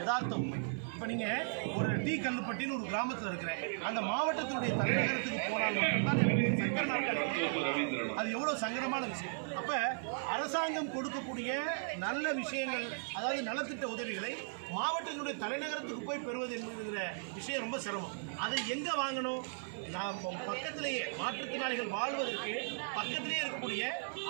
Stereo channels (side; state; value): left; silent; digital silence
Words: உண்மை. இப்போ நீங்கள் ஒரு டி கல்லுப்பட்டின்னு ஒரு கிராமத்தில் இருக்கிற அந்த மாவட்டத்தினுடைய தலைநகரத்துக்கு போனால் மட்டும்தான் சக்கர நாட்கள் அது எவ்வளோ சங்கடமான விஷயம். அப்போ அரசாங்கம் கொடுக்கக்கூடிய நல்ல விஷயங்கள், அதாவது நலத்திட்ட உதவிகளை மாவட்டத்தினுடைய தலைநகரத்துக்கு போய் பெறுவது என்கிற விஷயம் ரொம்ப சிரமம். அதை எங்கே வாங்கணும்? நாம் பக்கத்திலேயே மாற்றுத்திறனாளிகள் வாழ்வதற்கு பக்கத்திலேயே இருக்கக்கூடிய